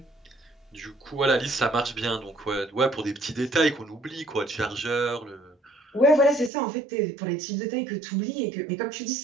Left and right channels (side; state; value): left; drops out; at 6.5 s